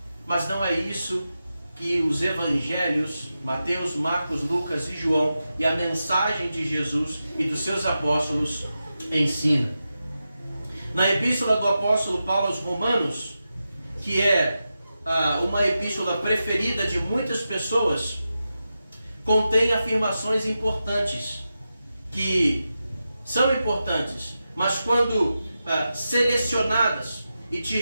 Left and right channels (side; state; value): both; inverted; correlation -0.90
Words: mas não é isso que os evangelhos, Mateus, Marcos, Lucas e João, e a mensagem de Jesus e dos seus apóstolos ensina. Na epístola do apóstolo Paulo aos Romanos, que é uma epístola preferida de muitas pessoas, contém afirmações importantes, que são importantes, mas quando selecionadas e